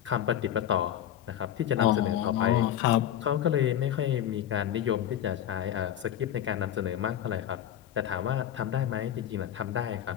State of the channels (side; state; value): right; quieter; 11.0 dB